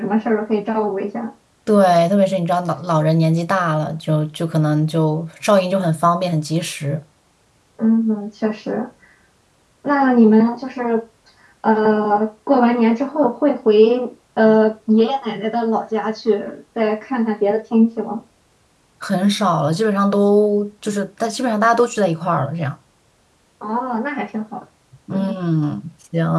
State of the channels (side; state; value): both; identical; correlation 1.00